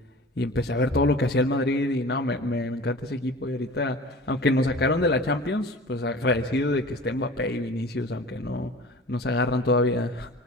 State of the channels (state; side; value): normal; both; correlation 0.40